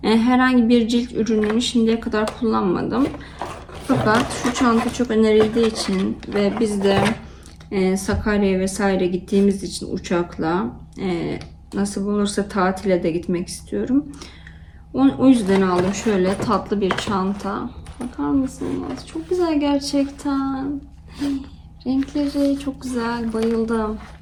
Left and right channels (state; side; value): identical; both; correlation 1.00